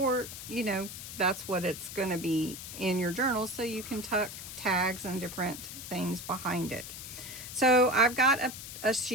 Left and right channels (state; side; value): noise; left; hiss, 10 dB below the sound